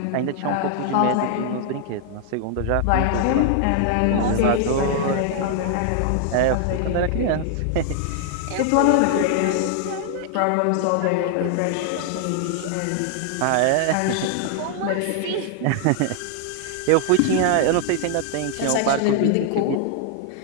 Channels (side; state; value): both; different; correlation 0.00